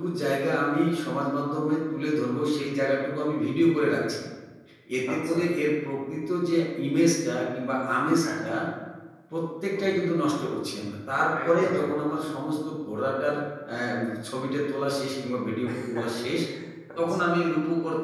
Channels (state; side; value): identical; both; correlation 1.00